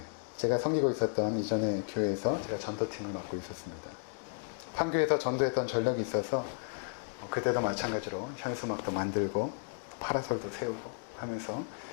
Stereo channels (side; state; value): right; silent; digital silence